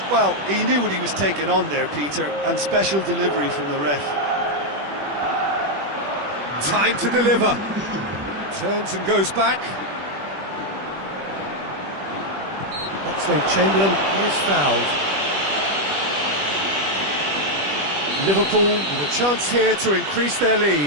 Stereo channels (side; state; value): left; late; 21 ms